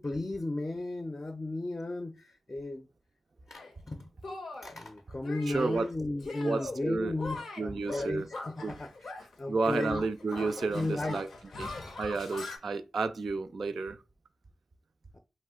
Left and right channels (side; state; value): both; normal; correlation 0.91